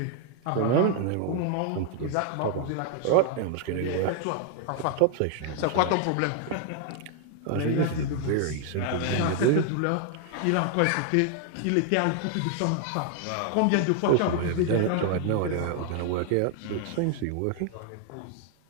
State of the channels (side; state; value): both; different; correlation 0.00